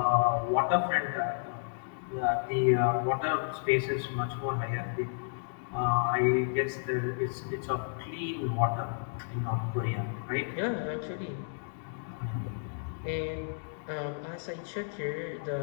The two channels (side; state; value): right; silent; digital silence